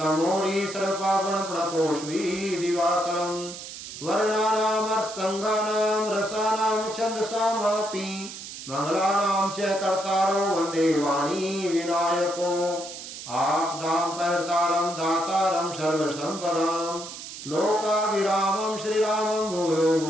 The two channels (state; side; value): noise; right; hiss, 11 dB below the sound